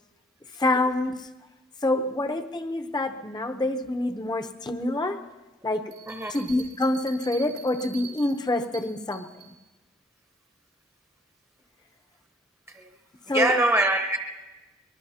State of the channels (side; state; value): both; normal; correlation 0.62